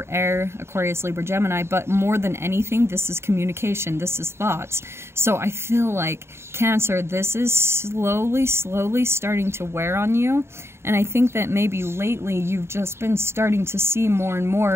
air, Aquarius, Libra, Gemini, but more than anything, this is communication, this is thoughts. So I feel like, Cancer, this is slowly starting to wear on you, and I think that maybe lately you've just been starting to see more and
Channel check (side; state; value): left; late; 0.12 ms